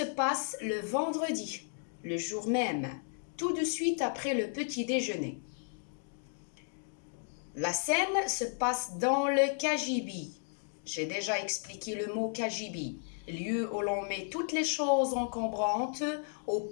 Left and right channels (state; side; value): silent; right; 55 dB below the other